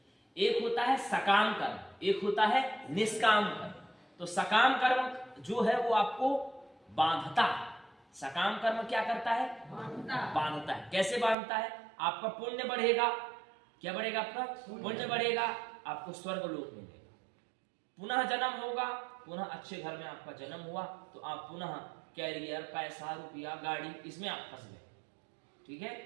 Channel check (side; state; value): left; drops out; at 11.4 s